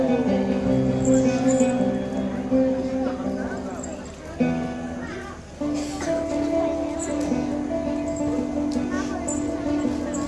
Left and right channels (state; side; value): identical; both; correlation 1.00